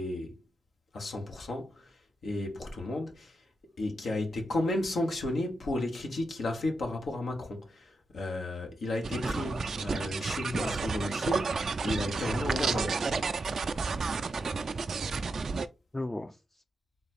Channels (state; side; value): normal; both; correlation 0.85